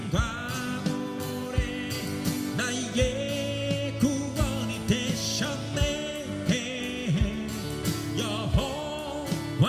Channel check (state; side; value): identical; both; correlation 1.00